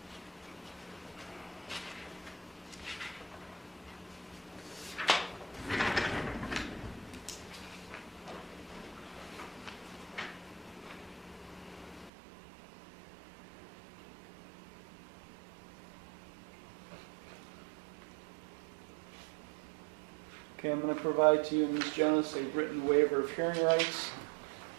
Okay, I'm going to provide to you, Ms. Jonas, a written waiver of hearing rights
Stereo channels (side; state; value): left; drops out; at 12.1 s